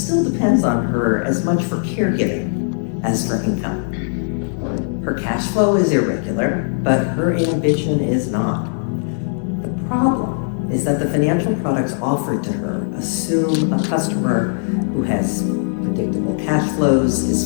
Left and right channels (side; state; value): right; silent; digital silence